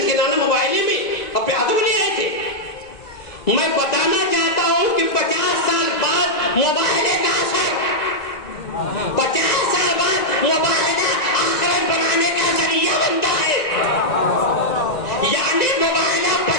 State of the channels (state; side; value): late; right; 2.0 ms